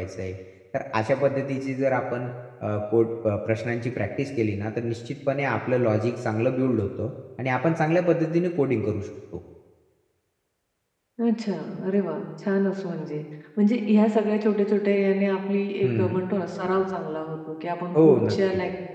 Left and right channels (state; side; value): identical; both; correlation 1.00